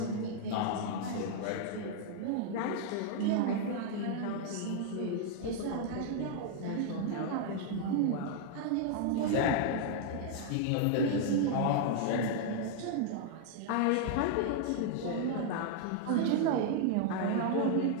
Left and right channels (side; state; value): both; different; correlation 0.00